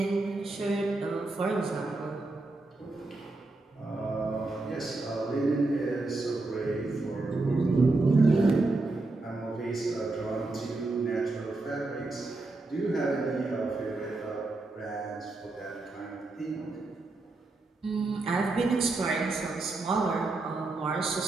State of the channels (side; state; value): left; quieter; 3.2 dB